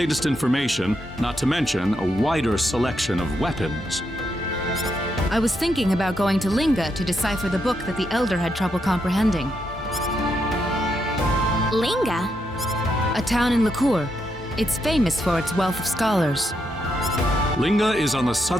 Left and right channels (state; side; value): normal; both; correlation 0.81